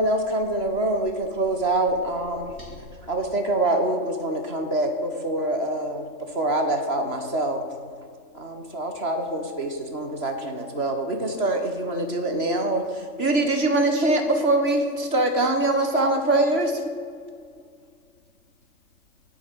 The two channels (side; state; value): right; late; 3.0 ms